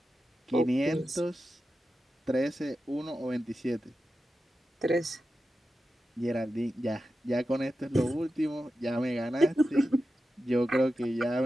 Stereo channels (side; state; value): both; normal; correlation 0.91